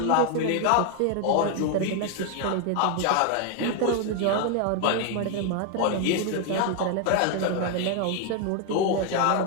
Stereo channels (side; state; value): both; different; correlation 0.01